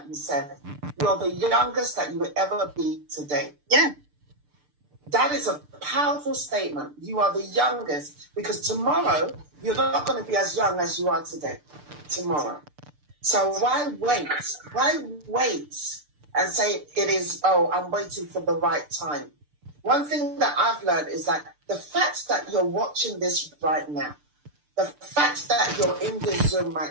you said. You're the youngest that you will ever be today. Yeah. That is a powerful statement. You are the youngest, because tomorrow you're not going to be as young as you are today. Tomorrow. So why wait? Why wait and say I'm waiting for the right time? One thing that I've learned is that the fact that you're watching this right now, the fact that you're in this Zoom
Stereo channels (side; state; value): left; late; 6.8 ms